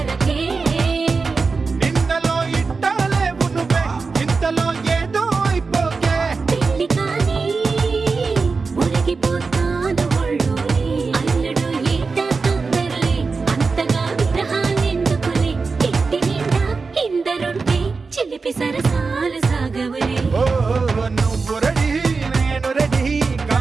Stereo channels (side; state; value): left; quieter; 4.4 dB